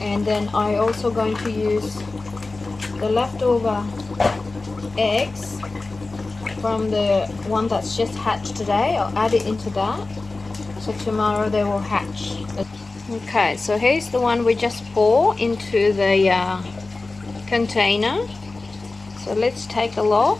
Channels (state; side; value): quieter; right; 3.4 dB